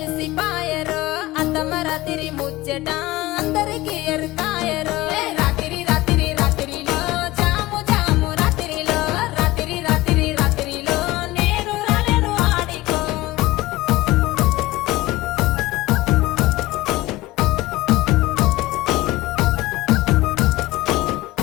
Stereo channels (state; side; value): quieter; right; 18.5 dB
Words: పాయరో అత్తమ్మ రాత్రి ముచ్చట అందరికి ఎరుకాయరో రాత్రి రాత్రి రాత్రిలో జాము జాము రాత్రిలో రాత్రి రాత్రి రాత్రిలో నేను రాలేను ఆడికో